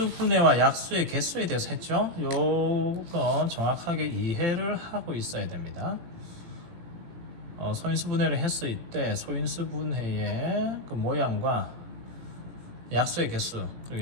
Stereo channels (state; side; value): late; left; 18 ms